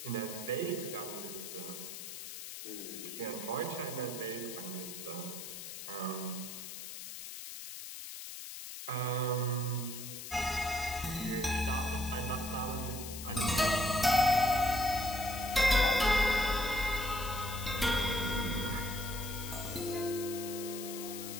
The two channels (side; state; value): left; noise; hiss, 9 dB below the sound